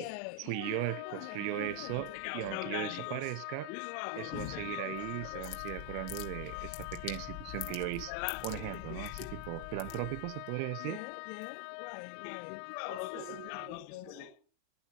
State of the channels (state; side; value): different; both; correlation 0.01